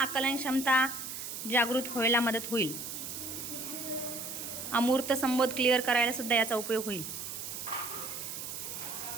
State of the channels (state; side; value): noise; right; hiss, 7 dB below the sound